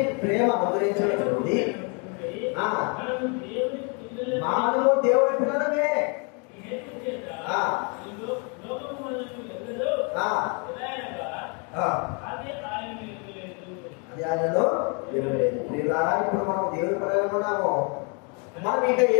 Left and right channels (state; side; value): quieter; right; 34.8 dB